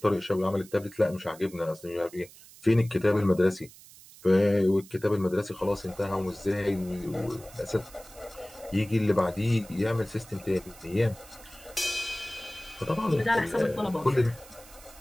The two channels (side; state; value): right; noise; hiss, 21 dB below the sound